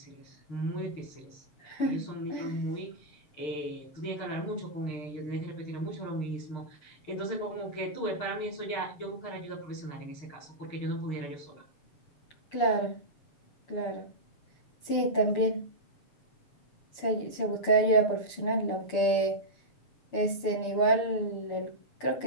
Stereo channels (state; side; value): late; right; 6.9 ms